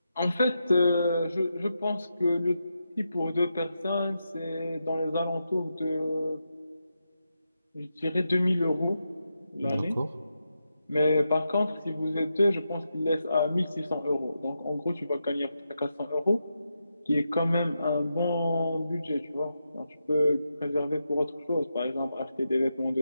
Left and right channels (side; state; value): both; inverted; correlation -0.86